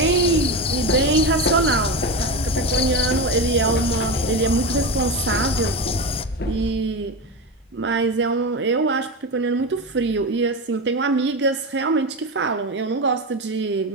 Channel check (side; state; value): both; normal; correlation 0.19